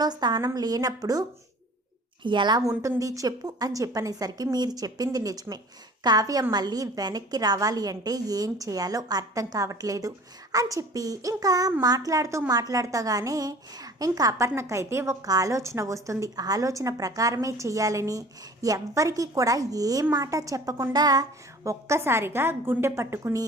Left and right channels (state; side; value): normal; both; correlation 0.46